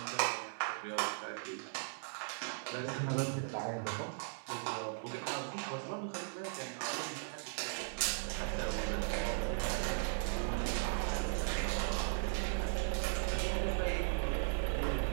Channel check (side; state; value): left; silent; digital silence